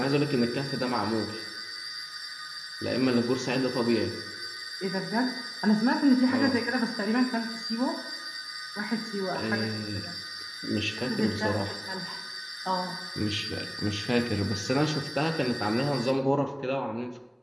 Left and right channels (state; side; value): identical; both; correlation 1.00